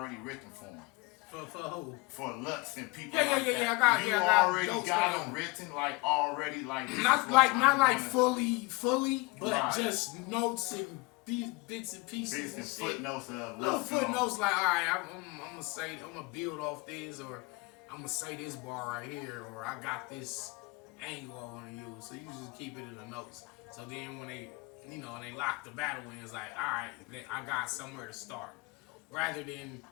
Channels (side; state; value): right; quieter; 25.3 dB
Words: written for them. For who? For Lux and people. Yeah. Like I got already jokes got for them written, like already, like not like fully, but right. just notes and bits and pieces Bits and shit. footnotes of Little Lux. footnotes like, all right, I'm gonna build off this, or I'm gonna say this bar right here, or I got this angle I want to use. So you just keep it in the notes. So then when they lock the battle in, it's like, all right, I got somewhere to start, rather than